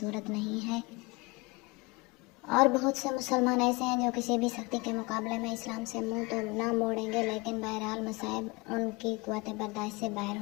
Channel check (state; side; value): quieter; right; 25.5 dB